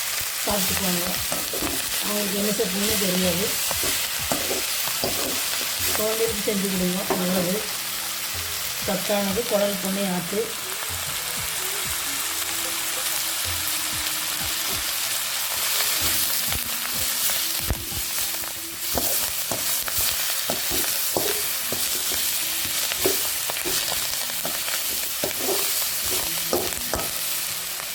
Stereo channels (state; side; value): identical; both; correlation 1.00